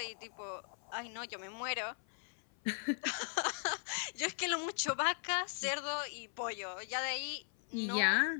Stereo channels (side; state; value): right; silent; 52 dB below the other